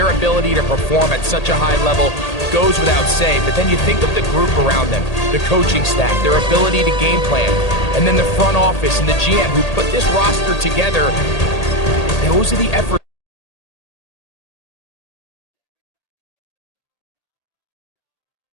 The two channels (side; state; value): right; late; 1.8 ms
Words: ability to perform at such a high level goes without saying, but then you think of the group around them, the coaching staff, their ability to game plan, and then the front office and the GM who put this roster together. Those are the efforts.